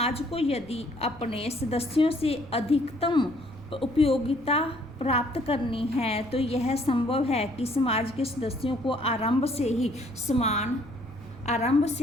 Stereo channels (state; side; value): noise; right; rumble, 20 dB below the sound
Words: को यदि अपने सदस्यों से अधिकतम उपयोगिता प्राप्त करनी है तो यह संभव है कि समाज के सदस्यों को आरंभ से